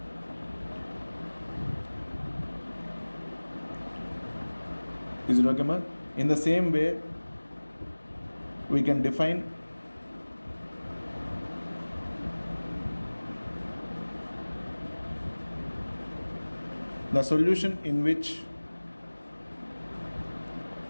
Is it okay, ma? In the same way, we can define the solution in which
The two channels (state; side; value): inverted; both; correlation -1.00